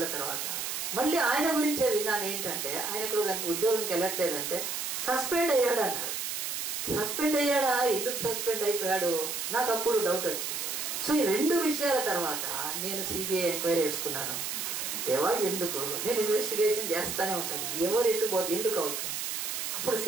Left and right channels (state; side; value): noise; right; hiss, 3 dB below the sound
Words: తర్వాత మళ్ళీ ఆయన గురించే విన్నాను. ఏంటంటే ఆయన ఇక్కడ కనుక ఉద్యోగంకి వెళ్ళట్లేదంటే సస్పెండ్ అయ్యాడు అన్నారు. సస్పెండ్ అయ్యాడా? ఎందుకు సస్పెండ్ అయిపోయాడు? నాకు అప్పుడు డౌట్ వచ్చింది. సో ఈ 2 విషయాల తర్వాత నేను సిబిఐ ఎంక్వైరీ వేసుకున్నాను. దేవా ఎందుకు? నేను ఇన్వెస్టిగేషన్ చేస్తూనే ఉంటాను, ఎవరు ఎటు పోతే ఎందుకు అవుతుంది. అప్పుడు